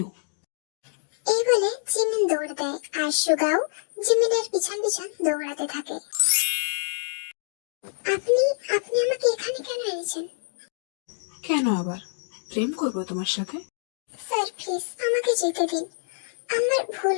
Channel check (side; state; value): right; silent; digital silence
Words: এই বলে জিমিন দৌড় দেয় আর সুগাও জিমিনের পিছন পিছন দৌড়াতে থাকে। আপনি আপনি আমাকে এখানে কেন এনেছেন? কেন আবার প্রেম করবো তোমার সাথে? স্যার প্লিজ আমাকে যেতে দিন। আমার ভুল